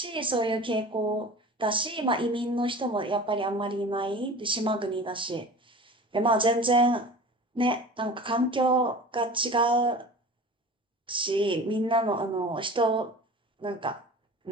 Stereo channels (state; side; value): normal; both; correlation 0.38